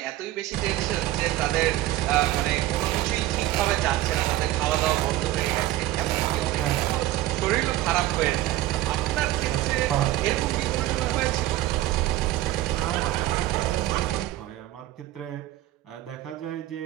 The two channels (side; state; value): left; quieter; 15.4 dB